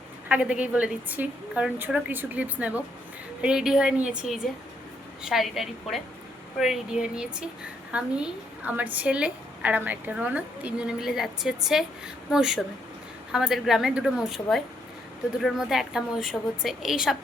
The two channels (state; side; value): normal; both; correlation 0.74